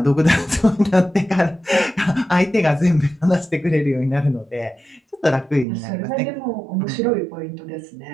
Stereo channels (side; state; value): left; drops out; at 5.7 s